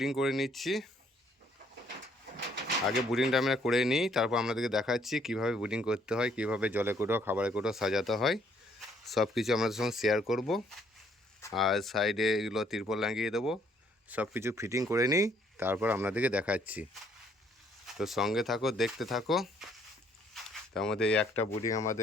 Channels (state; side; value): normal; both; correlation 0.66